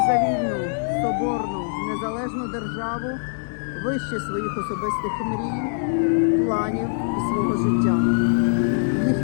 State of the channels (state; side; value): silent; right; 63 dB below the other